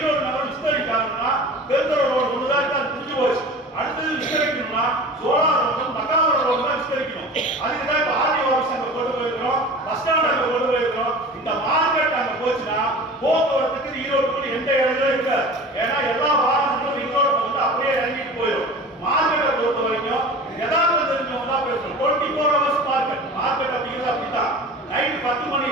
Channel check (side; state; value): both; normal; correlation 0.37